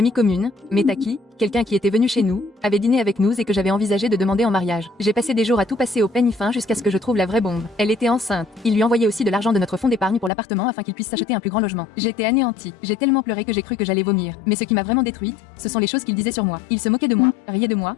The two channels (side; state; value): right; drops out; at 10.3 s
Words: commune, Metaki, quelqu'un qui était venu chez nous, avait dîné avec nous et que j'avais envisagé de demander en mariage. J'ai passé des jours à tout passer au peigne fin jusqu'à ce que je trouve la vraie bombe. Elle était enceinte. Il lui envoyait aussi de l'argent de notre fonds d'épargne pour l'appartement afin qu'il puisse s'acheter un plus grand logement. J'étais anéantie. J'ai tellement pleuré que j'ai cru que j'allais vomir. Mais ce qui m'a vraiment détruite, ce sont les choses qu'il disait sur moi. Il se moquait de moi, riait de moi,